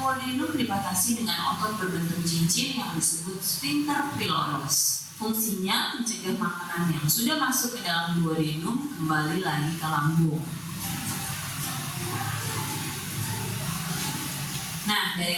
dibatasi dengan otot berbentuk cincin yang disebut sphincter pylorus. Fungsinya mencegah makanan yang sudah masuk ke dalam duodenum kembali lagi ke lambung. Nah,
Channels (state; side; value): identical; both; correlation 1.00